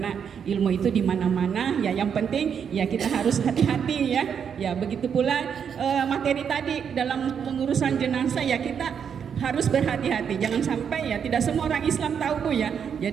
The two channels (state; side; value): quieter; left; 7.5 dB